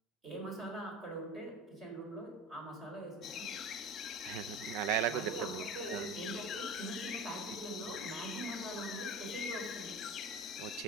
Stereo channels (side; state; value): both; normal; correlation 0.33